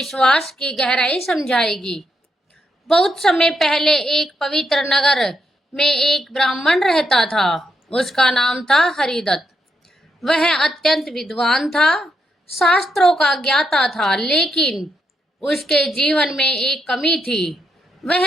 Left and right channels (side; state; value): both; normal; correlation 0.80